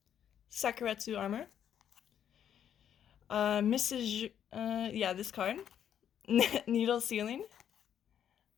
Sakuretsu Armor, this card, Needle Ceiling,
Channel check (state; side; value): quieter; right; 9.4 dB